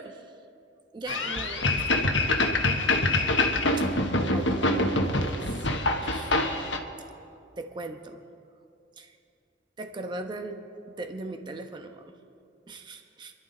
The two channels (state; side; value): normal; both; correlation 0.22